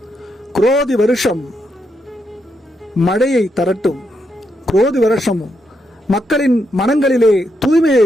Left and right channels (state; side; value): normal; both; correlation 0.80